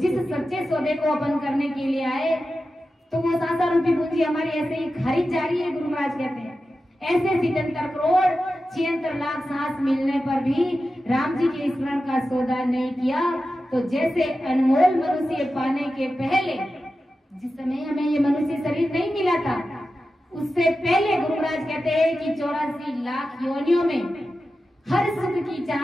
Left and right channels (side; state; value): both; normal; correlation 0.92